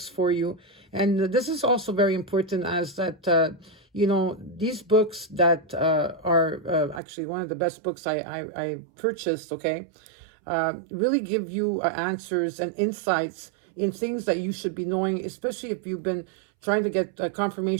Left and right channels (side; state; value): left; drops out; at 7.0 s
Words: for you. And this is also very important, as that you know, these books that are actually one of the best books I purchased, okay, really give you answers and insights in things that you should be knowing, especially if you've been trying to get